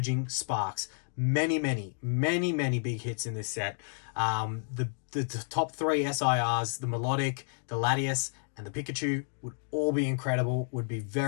Sparks. Many big hits in this set. The top 3 SIRs, the Melodic, the Latias, and the Pikachu would all be incredible, would be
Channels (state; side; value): silent; right; 57 dB below the other